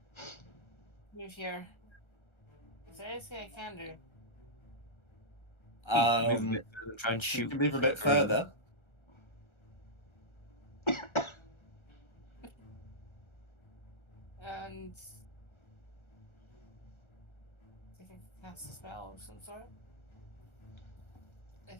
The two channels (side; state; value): right; late; 1.3 ms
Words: Move here. Is there anything I can do? Move a bit further, try and You shoot. can move a bit further. And I think I can cast a spell of some sort.